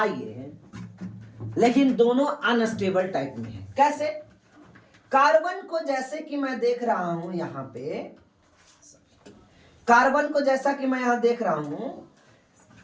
लेकिन दोनों अनस्टेबल टाइप में है। कैसे? कार्बन को जैसे कि मैं देख रहा हूं यहां पे, कार्बन को जैसा कि मैं यहां देख रहा हूं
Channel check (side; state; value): both; identical; correlation 1.00